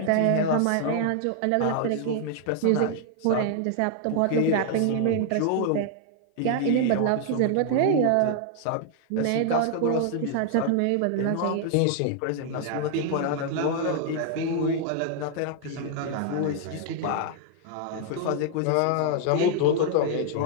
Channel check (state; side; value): different; both; correlation 0.00